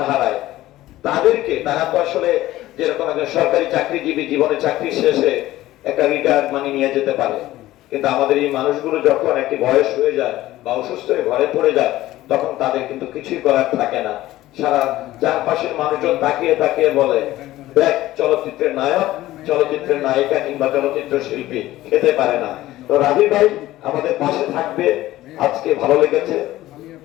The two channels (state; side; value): quieter; right; 15.8 dB